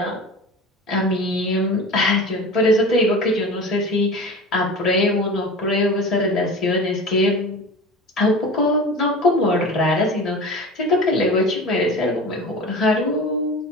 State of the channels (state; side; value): normal; both; correlation 0.34